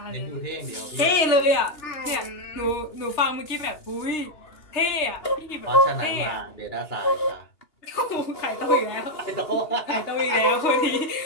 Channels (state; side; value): late; right; 2.8 ms